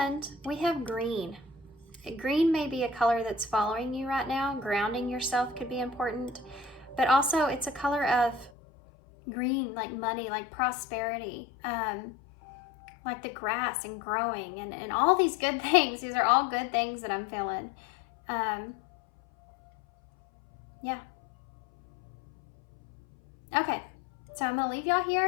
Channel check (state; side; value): drops out; right; at 8.5 s